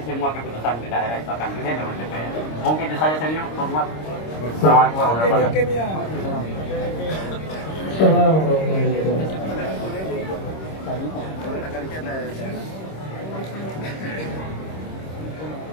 semua keputusan di daerah itu akan dilihat oleh DPR. Mungkin itu saja senior, hormat. Assalamualaikum warahmatullahi wabarakatuh.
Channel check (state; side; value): late; right; 26 ms